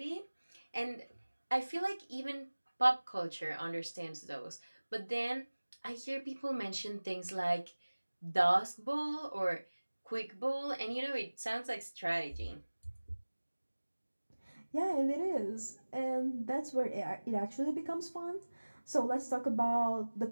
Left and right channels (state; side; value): inverted; both; correlation -1.00